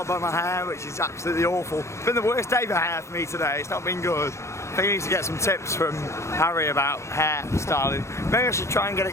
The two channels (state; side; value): late; right; 0.14 ms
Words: by my hair, which is absolutely awful. It's been the worst day for hair for me today. It's not been good. I think I need to get some tips from Harry about hair styling. Maybe I should try and get